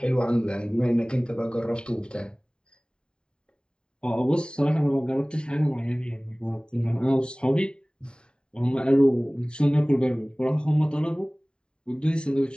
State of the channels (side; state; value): right; late; 0.049 ms